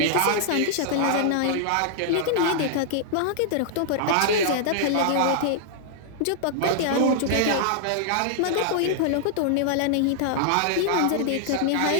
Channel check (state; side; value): different; both; correlation -0.01